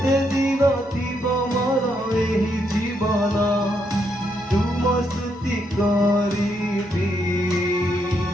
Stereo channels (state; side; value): normal; both; correlation 0.77